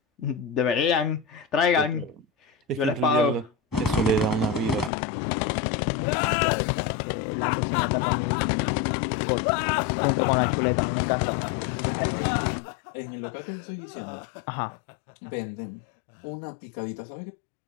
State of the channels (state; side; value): drops out; right; at 4.9 s